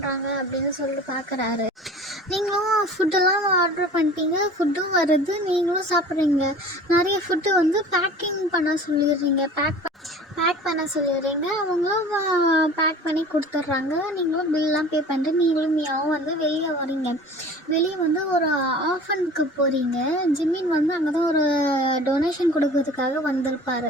அப்படின்னு சொல்லிட்டு பார்க்குறாரு. நீங்களும் ஃபுட்டெல்லாம் ஆர்டர் பண்ணிட்டீங்க, ஃபுட்டும் வருது, நீங்களும் சாப்பிட்றீங்க. நிறைய ஃபுட்டு பேக்கிங் பண்ண சொல்லிடுறீங்க, பேக் பண்ண சொல்லிடுறீங்க. அவங்களும் பேக் பண்ணி கொடுத்துட்றாங்க. நீங்களும் பில்லாம் பே பண்ணிட்டு நீங்களும் மியாவும் வெளியே வரீங்க. வெளியே ஒரு ஆஃபனுக்கு போகிறீங்க. ஜிம்மின் அங்கே தான் ஒரு டொனேஷன் கொடுக்கறதுக்காக வந்திருப்பார்.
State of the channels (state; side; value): normal; both; correlation 0.42